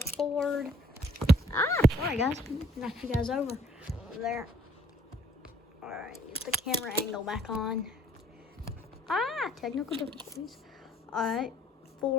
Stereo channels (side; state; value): both; normal; correlation 0.61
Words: Sorry guys, knocked you guys over there. All right, get the camera angle back on. Technical difficulties. All right,